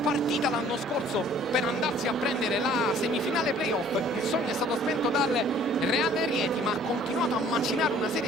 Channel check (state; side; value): normal; both; correlation 0.55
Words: l'anno scorso per andarsi a prendere la semifinale playoff, il sogno è stato spento dal Reale Rieti ma ha continuato a macinare una